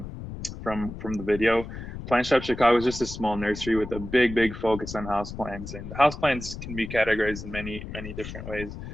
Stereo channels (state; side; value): noise; left; rumble, 10 dB below the sound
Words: the video, Plant Shop Chicago is just a small nursery with a big focus on houseplants. And houseplants can be categorized in many different ways.